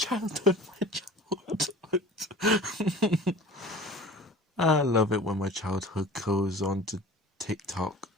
I love it when my childhood goes on to TikTok.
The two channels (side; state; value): both; normal; correlation 0.41